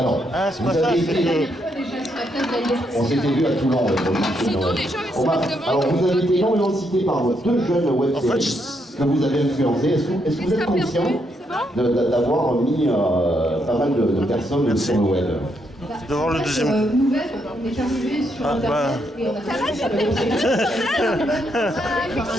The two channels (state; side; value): normal; both; correlation 0.77